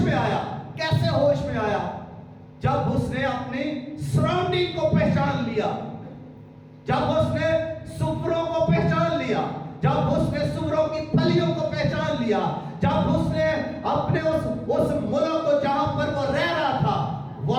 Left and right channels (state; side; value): identical; both; correlation 1.00